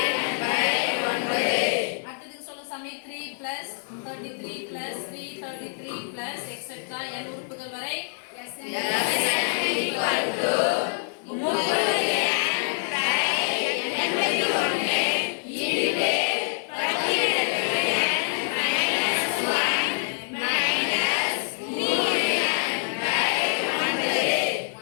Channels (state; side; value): silent; right; 55 dB below the other